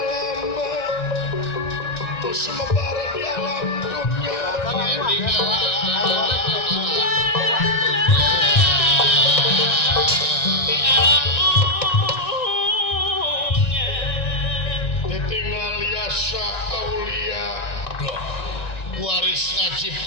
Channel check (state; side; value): late; right; 1.9 ms